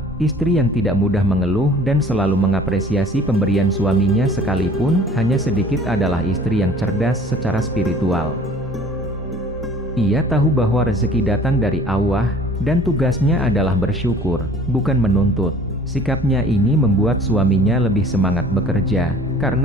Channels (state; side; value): normal; both; correlation 0.49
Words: Istri yang tidak mudah mengeluh dan selalu mengapresiasi pemberian suaminya sekalipun hanya sedikit adalah istri yang cerdas secara spiritual. Ia tahu bahwa rezeki datang dari Allah, dan tugasnya adalah bersyukur, bukan menuntut. Sikapnya ini membuat suaminya lebih semangat bekerja,